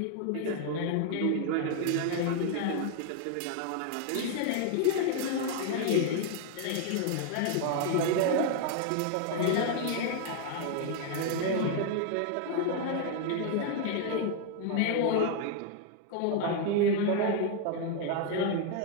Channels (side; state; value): both; different; correlation 0.00